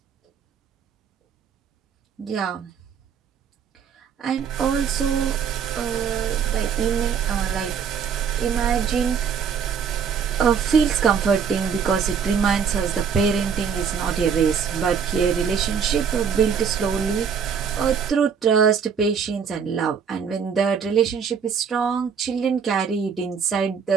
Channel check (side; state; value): left; quieter; 6.8 dB